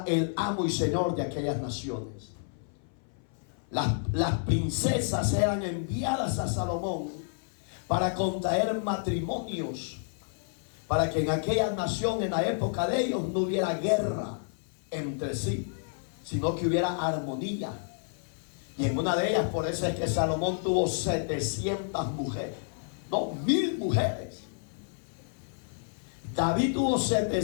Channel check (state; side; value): silent; right; 57 dB below the other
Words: el amo y señor de aquellas naciones. Las princesas eran enviadas a Salomón para contraer matrimonios, para que en aquella nación, en la época de ellos, no hubiera guerra entre sí, sino que hubiera armonía. Y en una de ellas, por eso es que Salomón tuvo 700 mujeres, no, 1000 mujeres. David tuvo